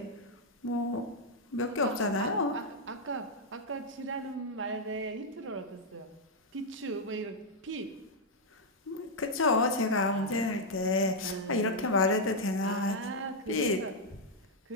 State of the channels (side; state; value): both; normal; correlation -0.02